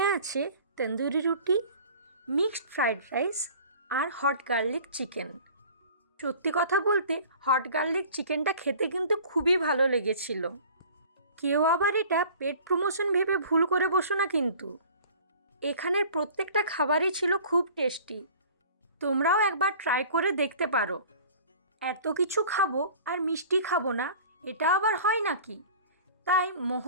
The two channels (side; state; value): both; inverted; correlation -0.45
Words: আছে তন্দুরি রুটি, মিক্সড ফ্রাইড রাইস আর হট গার্লিক চিকেন। সত্যি কথা বলতে হট গার্লিক চিকেনটা খেতে কিন্তু খুবই ভালো লেগেছিল। কেউ আবার এটা পেট প্রমোশন ভেবে ভুল করে বসো না কিন্তু। এখানের প্রত্যেকটা খাবারই ছিল খুব টেস্টি। তোমরাও একবার ট্রাই করে দেখতে পারো। এত কিছু খাবো আর মিষ্টি খাবো না, এটা আবার হয় নাকি? তাই